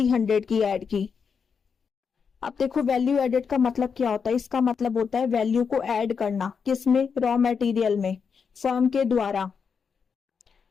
की ऐड की। अब देखो वैल्यू एडेड का मतलब क्या होता है, इसका मतलब होता है वैल्यू को ऐड करना, किसमें, रॉ मटेरियल में, फर्म के द्वारा।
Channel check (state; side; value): quieter; right; 6.1 dB